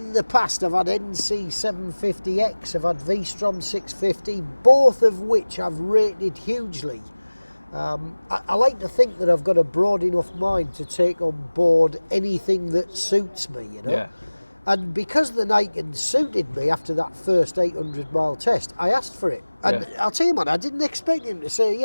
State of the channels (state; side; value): inverted; both; correlation -1.00